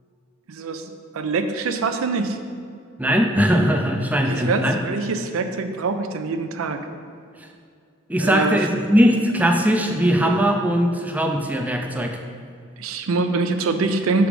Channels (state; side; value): normal; both; correlation 0.63